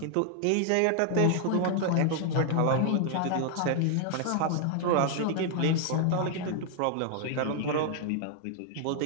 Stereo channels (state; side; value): different; both; correlation 0.00